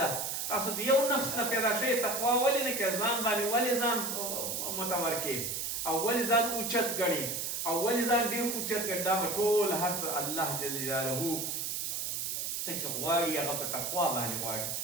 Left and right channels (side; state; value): right; noise; hiss, 2 dB below the sound